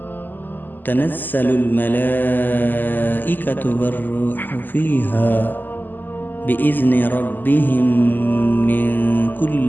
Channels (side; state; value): right; late; 0.088 ms